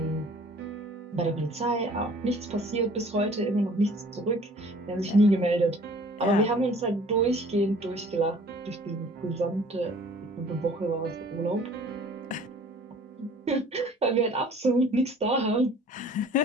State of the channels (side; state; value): both; normal; correlation 0.51